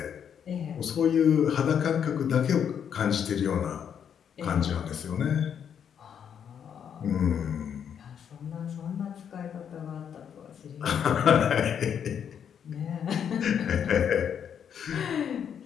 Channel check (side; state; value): right; quieter; 8.2 dB